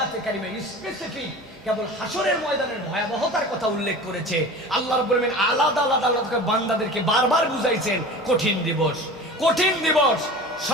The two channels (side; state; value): both; normal; correlation 0.36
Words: কারিমা স্পেসিফিক কেবল হাসরের ময়দানের ভয়াবহতার কথা উল্লেখ করেছে। আল্লাহ রাব্বুল আলামিন আলাদা আলাদা বান্দাদেরকে বারবার বুঝাইছেন কঠিন দিবস, কঠিন দিবস,